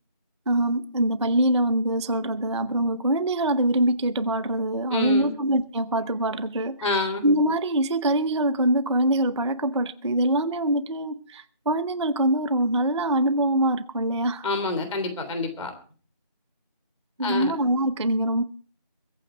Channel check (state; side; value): inverted; both; correlation -0.50